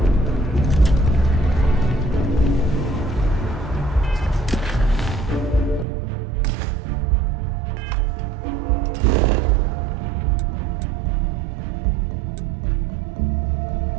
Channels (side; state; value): left; drops out; at 5.9 s